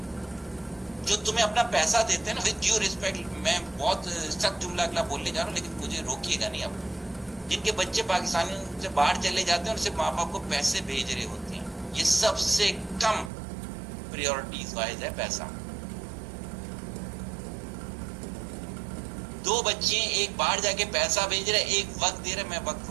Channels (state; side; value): drops out; left; at 13.3 s